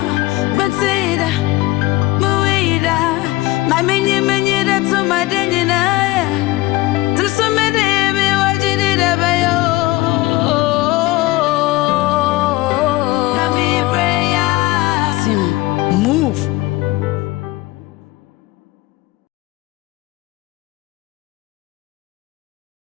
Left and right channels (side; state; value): right; quieter; 19.2 dB